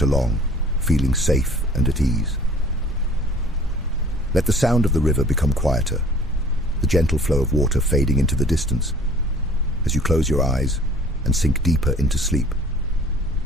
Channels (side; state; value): both; normal; correlation 0.50